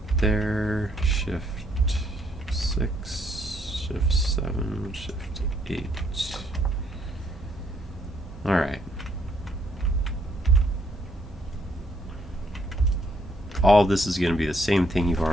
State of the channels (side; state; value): both; normal; correlation 0.70